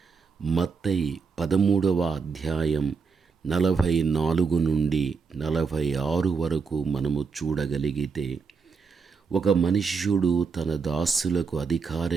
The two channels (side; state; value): left; quieter; 5.3 dB